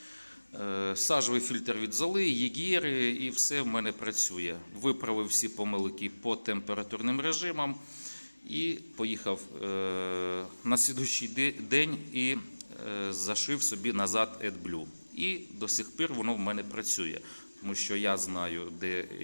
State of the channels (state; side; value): inverted; both; correlation -1.00